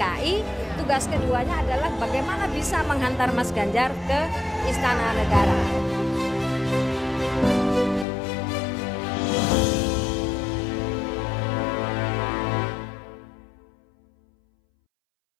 tugas keduanya adalah bagaimana bisa menghantar Mas Ganjar ke Istana Negara.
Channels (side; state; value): right; drops out; at 8.1 s